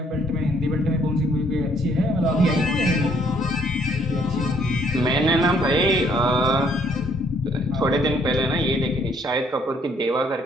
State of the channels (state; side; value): normal; both; correlation 0.65